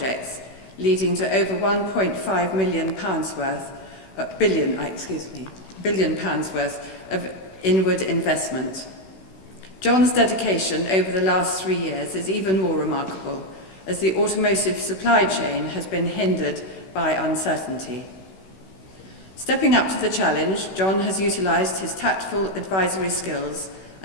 leading to over £1.5 billion worth of inward investment. John's dedication over the last 3 years is even more remarkable, as the automotive supply chain has been hindered by uncertainty. Stepping up to the challenge, John has utilised his tactful advisory skills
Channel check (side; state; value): right; late; 16 ms